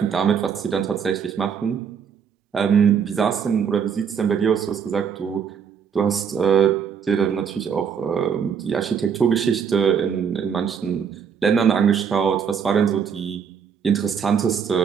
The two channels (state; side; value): quieter; left; 7.1 dB